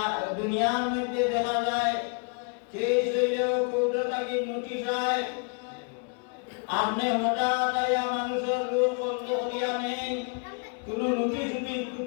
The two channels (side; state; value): right; quieter; 38.0 dB